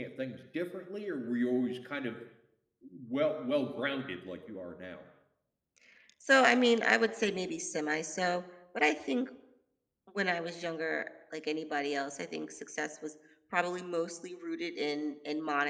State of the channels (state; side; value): identical; both; correlation 1.00